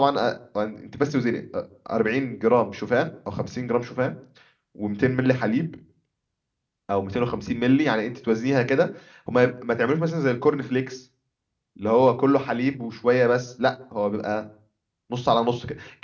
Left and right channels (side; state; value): both; identical; correlation 1.00